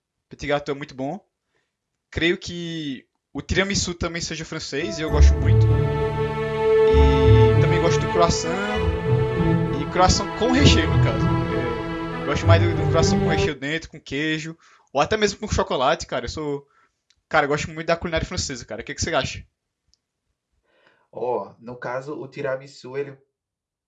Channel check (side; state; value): both; identical; correlation 1.00